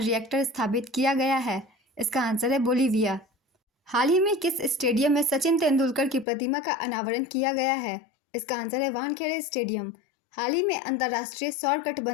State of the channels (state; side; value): drops out; right; at 6.2 s